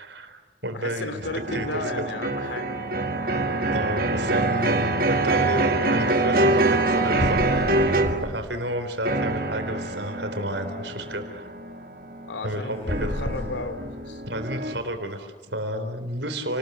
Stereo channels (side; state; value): both; normal; correlation 0.23